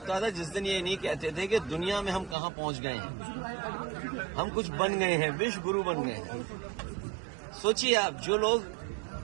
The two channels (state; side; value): drops out; left; at 2.4 s